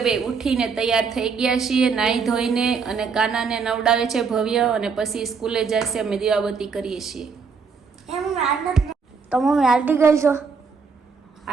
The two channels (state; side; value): quieter; left; 5.4 dB